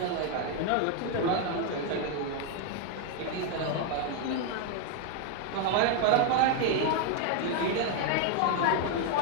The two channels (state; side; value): different; both; correlation 0.01